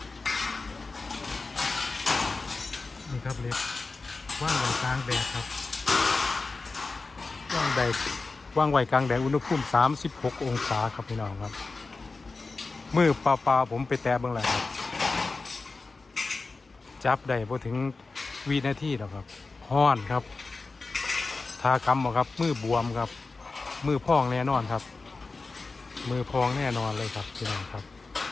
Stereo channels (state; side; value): quieter; right; 3.8 dB